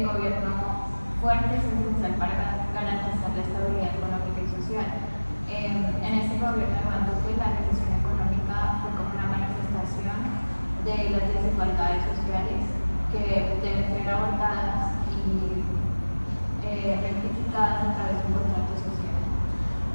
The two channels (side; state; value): both; inverted; correlation -1.00